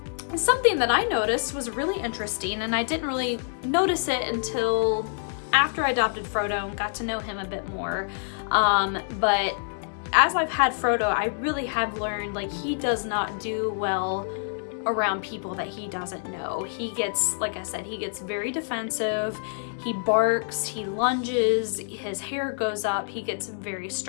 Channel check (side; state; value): right; silent; digital silence